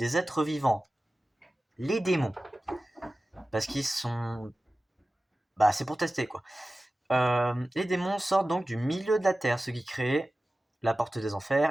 êtres vivants, les démons, parce qu'ils sont, c'est pour tester quoi. Les démons sortent donc du milieu de la terre, ce qui crée la porte des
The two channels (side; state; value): both; normal; correlation 0.96